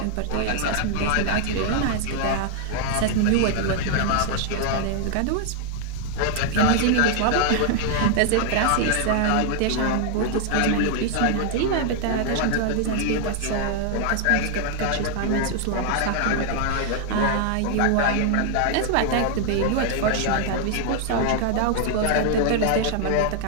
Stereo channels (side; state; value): both; different; correlation 0.00